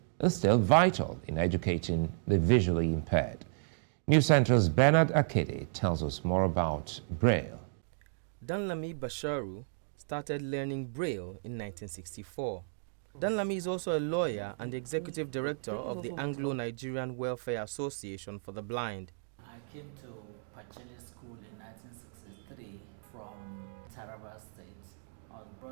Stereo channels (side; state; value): left; silent; digital silence